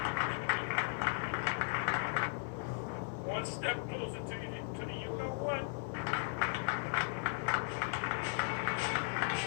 One step closer to the you know what?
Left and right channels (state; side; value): silent; right; digital silence